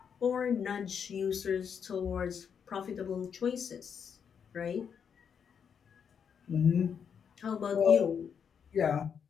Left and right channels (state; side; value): quieter; right; 7.2 dB